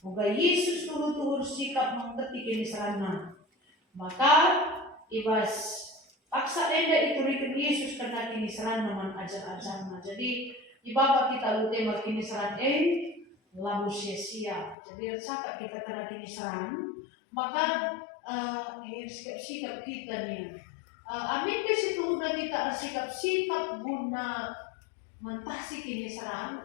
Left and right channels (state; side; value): drops out; right; at 14.8 s